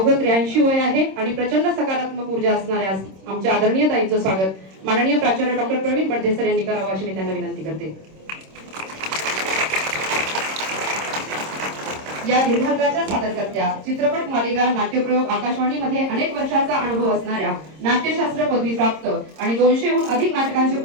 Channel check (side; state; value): left; late; 26 ms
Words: 83 वय आहे आणि प्रचंड सकारात्मक ऊर्जा असणाऱ्या आमच्या आदरणीय ताईंचं स्वागत माननीय प्राचार्य डॉक्टर प्रवीण बडदे सर यांनी करावं अशी मी त्यांना विनंती करते. या दीर्घांकाच्या सादरकर्त्या, चित्रपट मालिका नाट्यप्रयोग आकाशवाणीमध्ये अनेक वर्षाचा अनुभव असणाऱ्या, नाट्यशास्त्र पदवी प्राप्त आणि 200हून अधिक नाटकांचे